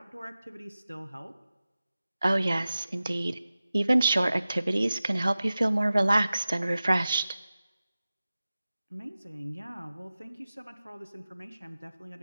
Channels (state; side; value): inverted; both; correlation -0.95